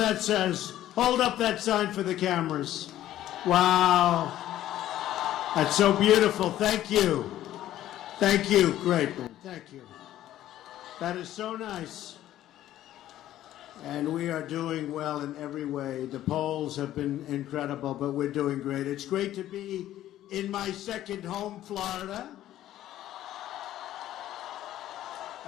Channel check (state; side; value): quieter; right; 13.1 dB